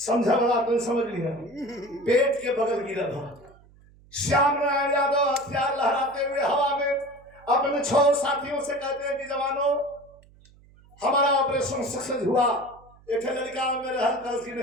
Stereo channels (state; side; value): noise; right; hum, 27 dB below the sound